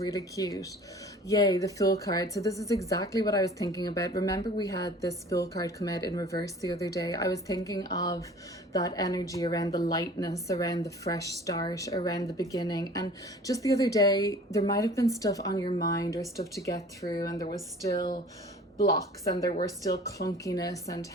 cute. Yay, the Fool card. So this is exactly what I was thinking about. Remember, we had this Fool card come out in reverse the other day. I was thinking of that energy around the lightness, around the fresh start, around the beginning. And just the other day, there might have been stuff on your mind or stuff to get through, and there was still blocks and there were still clunkiness and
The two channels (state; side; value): normal; both; correlation 0.46